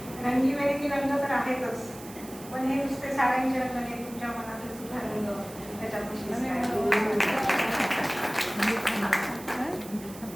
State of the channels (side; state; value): right; noise; hiss, 17 dB below the sound